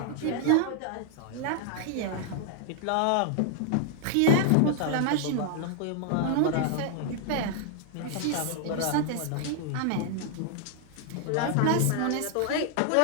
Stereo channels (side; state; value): both; different; correlation 0.00